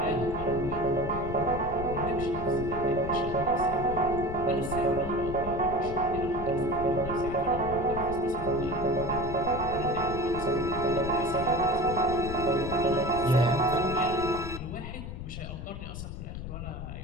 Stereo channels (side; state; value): left; noise; rumble, 8 dB below the sound